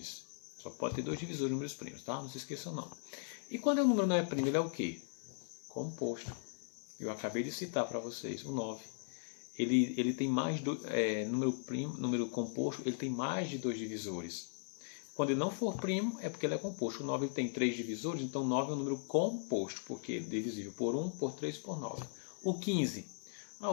Só pode ter 2 divisores números primos, tá? Não se esqueçam não. E quando o número não é primo, ele é o quê? Composto. Eu acabei de citar para vocês o 9. Ele tem mais número composto, ele tem mais de 2 divisores. Quando ele não for primo, é porque ele é composto. O 9 ele tem 3 divisores, então 9 é um número composto, porque ele é divisível por 1, por 3 e por 9. O 15.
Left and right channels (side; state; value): right; silent; digital silence